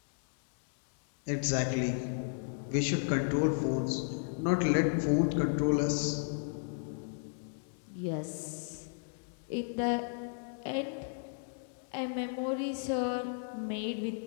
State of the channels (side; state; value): right; silent; digital silence